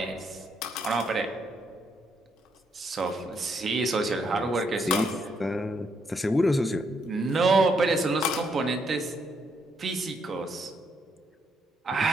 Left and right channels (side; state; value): both; normal; correlation 0.75